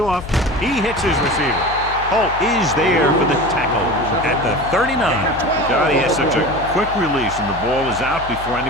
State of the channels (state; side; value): noise; left; hum, 13 dB below the sound